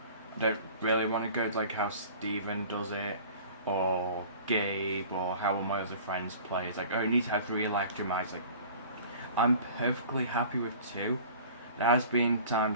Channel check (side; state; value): both; inverted; correlation -0.45